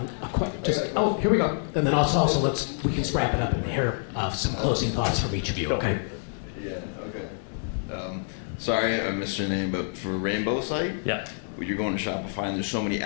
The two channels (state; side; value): silent; right; digital silence